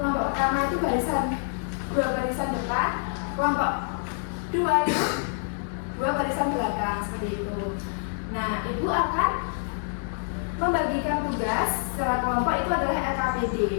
pertama itu dua barisan depan, kelompok dua itu dua barisan belakang, seperti itu. Nah, Ibu akan membagikan tugas secara kelompok itu adalah LKPD.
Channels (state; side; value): silent; right; digital silence